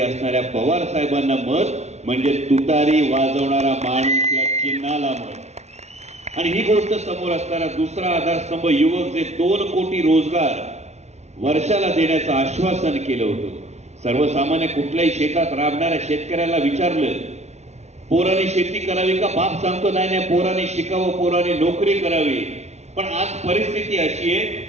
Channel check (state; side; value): late; left; 0.32 ms